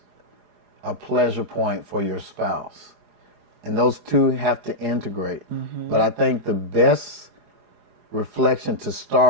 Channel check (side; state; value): left; late; 4.8 ms